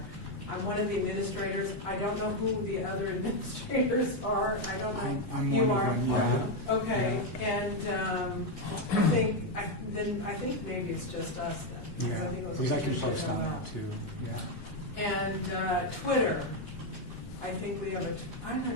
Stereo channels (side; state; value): right; late; 3.5 ms